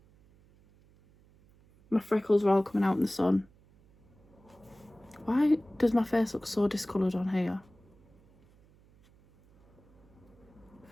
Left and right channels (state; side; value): noise; right; hum, 29 dB below the sound